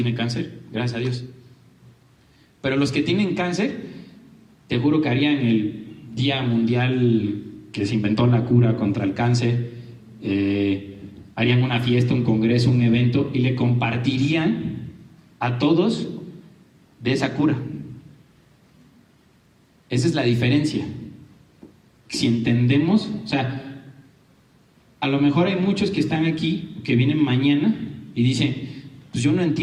cáncer, gracias a Dios. Pero los que tienen cáncer, te juro que harían el Día Mundial que se inventó la cura contra el cáncer, harían una fiesta, un congreso, un evento y le compartirían a todos de esa cura. Esa es la diferencia. Si entendemos, o sea, a lo mejor hay muchos que están aquí, que vienen mañana y dicen, pues yo no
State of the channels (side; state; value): both; identical; correlation 1.00